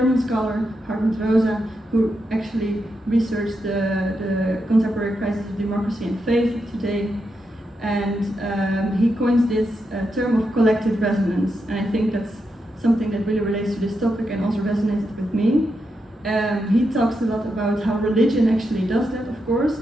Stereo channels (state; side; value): normal; both; correlation 0.85